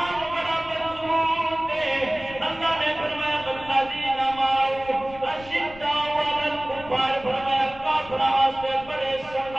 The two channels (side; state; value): left; noise; rumble, 19 dB below the sound